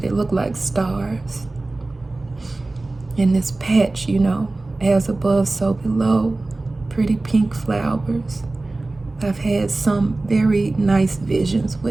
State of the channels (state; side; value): quieter; left; 3.1 dB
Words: look like stars. In this patch, you know, as above, so below. Pretty pink flowers. I've had some very nice visions